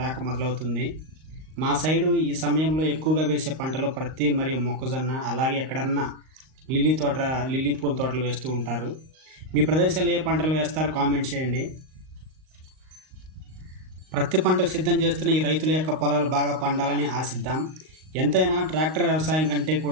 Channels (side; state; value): left; late; 38 ms